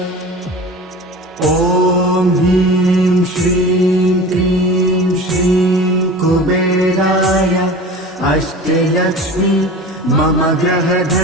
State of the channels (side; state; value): both; normal; correlation 0.36